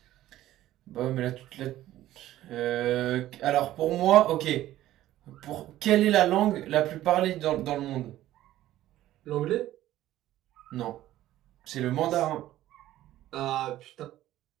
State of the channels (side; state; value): left; quieter; 14.2 dB